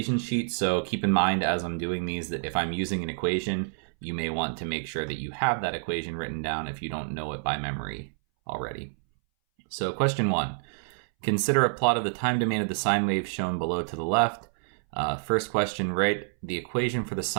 sheet, so keep in mind as I'm doing these that if I'm using an equation, you may want to make sure that you have that equation written down if you don't know it by memory already. So question 1, consider a plot of the time domain of the sine wave shown below to the left. First question, write the equation for the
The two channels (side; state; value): left; silent; 59 dB below the other